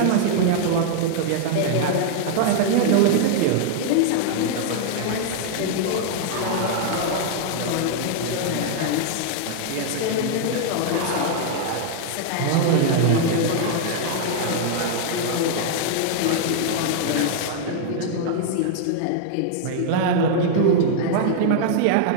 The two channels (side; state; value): both; different; correlation -0.01